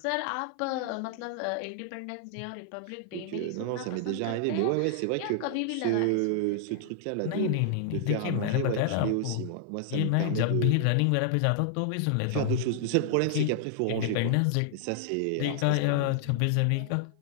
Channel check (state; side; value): different; both; correlation -0.01